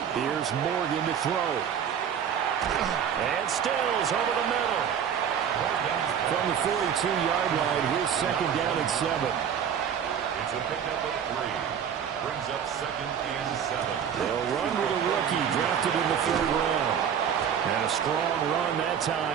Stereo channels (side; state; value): left; quieter; 8.2 dB